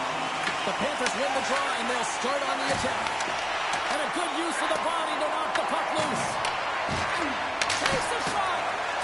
The Panthers win the draw, and they'll start on the attack. And a good use of the body to knock the puck loose. Takes the shot.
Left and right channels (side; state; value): both; identical; correlation 1.00